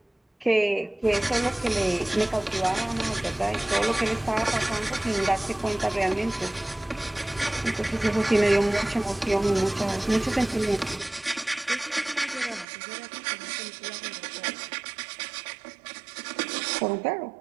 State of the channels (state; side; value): drops out; left; at 12.7 s